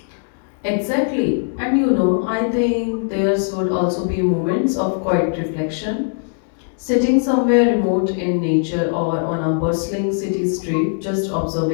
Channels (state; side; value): silent; right; digital silence